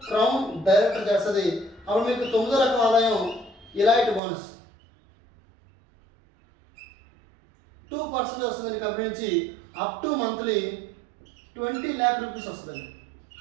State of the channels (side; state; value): left; drops out; at 4.2 s